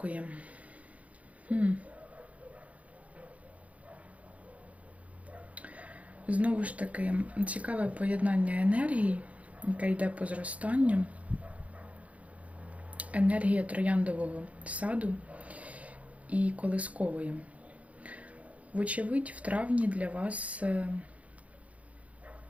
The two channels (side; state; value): left; late; 0.067 ms